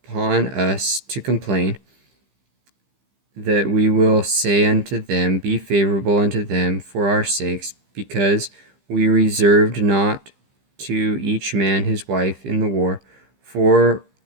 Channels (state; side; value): late; left; 15 ms